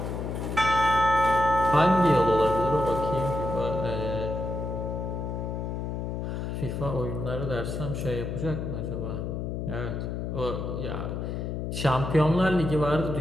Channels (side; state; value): left; noise; hum, 4 dB below the sound